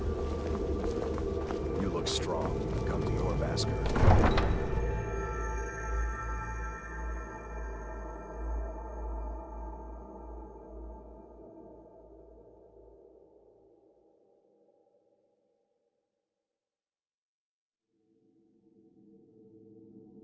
You look strong. Come to your Vasker.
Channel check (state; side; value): identical; both; correlation 1.00